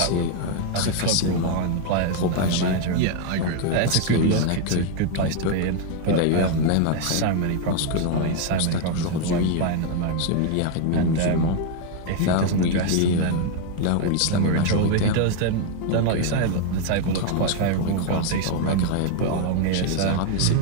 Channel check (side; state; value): both; different; correlation 0.01